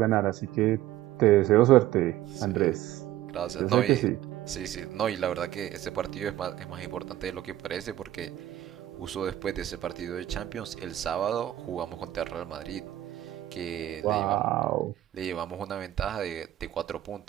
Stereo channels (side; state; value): left; quieter; 13.8 dB